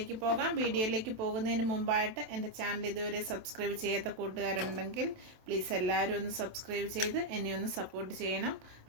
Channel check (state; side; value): late; left; 27 ms